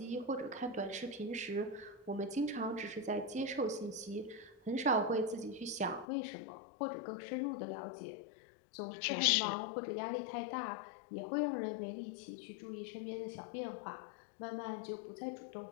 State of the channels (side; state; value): right; drops out; at 6.1 s